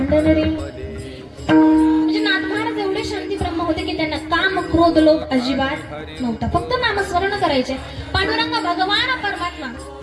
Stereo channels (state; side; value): identical; both; correlation 1.00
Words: रे. म्हणजे नाथ महाराज एवढे शांती ब्रह्म होते की त्यांना काम, क्रोध, लोभ अजिबात नव्हता. फक्त नामस्मरण करायचे. पांडुरंग भगवान परमात्मा,